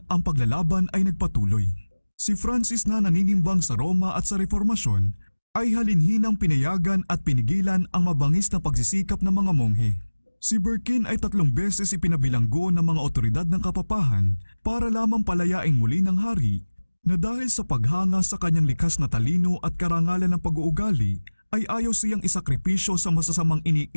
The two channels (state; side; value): inverted; both; correlation -1.00